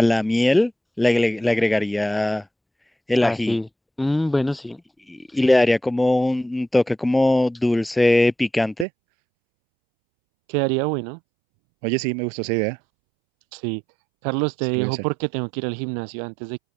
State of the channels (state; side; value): drops out; left; at 8.8 s